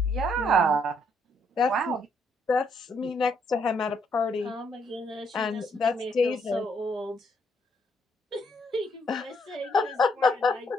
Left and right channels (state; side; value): normal; both; correlation 0.72